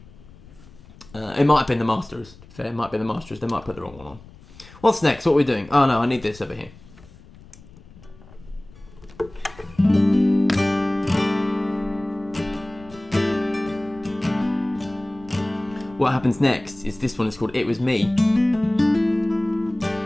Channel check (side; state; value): left; noise; rumble, 22 dB below the sound